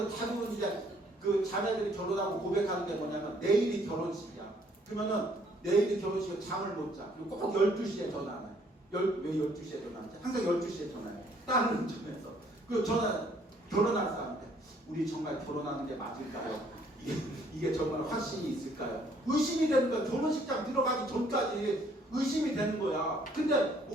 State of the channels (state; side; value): normal; both; correlation 0.64